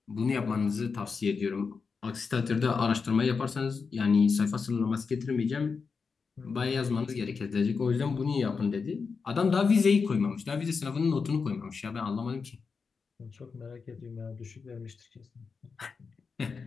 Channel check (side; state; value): right; quieter; 5.2 dB